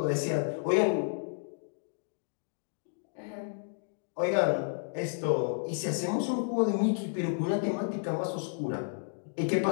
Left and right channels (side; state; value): right; silent; digital silence